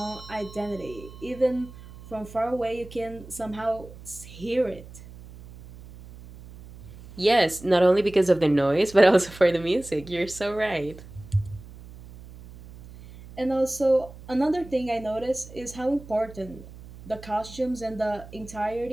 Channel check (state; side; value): noise; right; hum, 17 dB below the sound